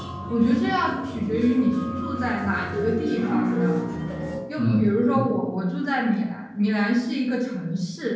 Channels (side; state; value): both; identical; correlation 1.00